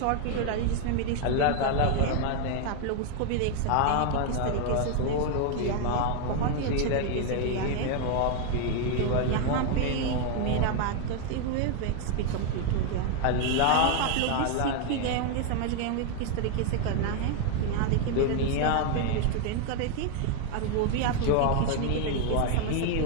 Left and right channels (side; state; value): both; different; correlation 0.01